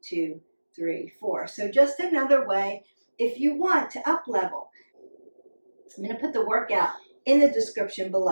2, 3, 4. So just another way if you want to up level. I'm going to put the workout in the description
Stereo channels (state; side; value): inverted; both; correlation -1.00